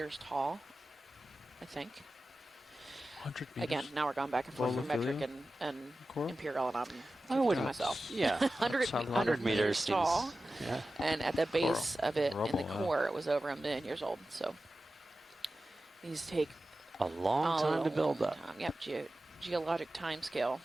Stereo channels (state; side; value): normal; both; correlation 0.94